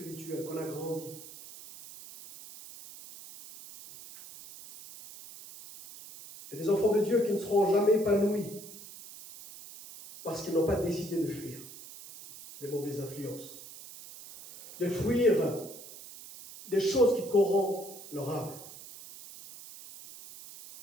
qu'on a grandi. Il y a des enfants de Dieu qui ne seront jamais épanouis parce qu'ils n'ont pas décidé de fuir des mauvaises influences, de fuir des choses qui corrompent leur âme.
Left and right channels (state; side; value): noise; right; hiss, 15 dB below the sound